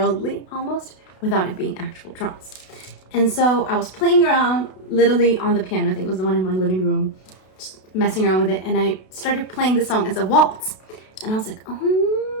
almost, without it being actual drums. And so I was playing around literally on the piano. I think it was the one in my living room, just messing around with it, and I started playing the song as a waltz. And I was like,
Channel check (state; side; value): late; right; 32 ms